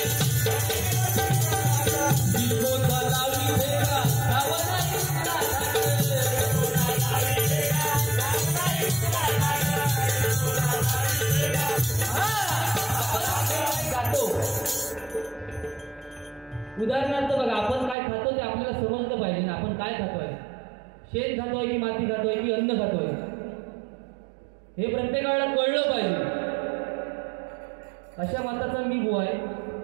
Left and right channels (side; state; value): left; drops out; at 17.9 s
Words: उदाहरणार्थ बघा आपण काय खातो ते आपल्याला समजलं पाहिजे ना. आपण काय खातोय शेण खातोय की माती खातोय की अन्न खातोय हे प्रत्येकाला कळलं पाहिजे. अशा मताचा मी बुवा आहे.